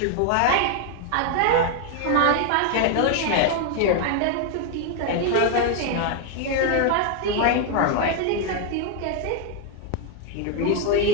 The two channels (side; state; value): both; different; correlation 0.00